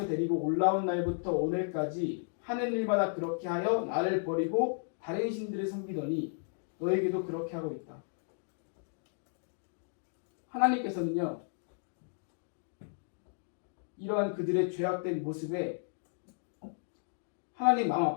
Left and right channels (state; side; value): silent; right; digital silence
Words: 데리고 올라온 날부터 오늘까지 하는 일마다 그렇게 하여 나를 버리고 다른 신들을 섬기더니 너에게도 그렇게 하고 있다. 하나님께서는요, 이러한 그들의 죄악된 모습에 하나님 마음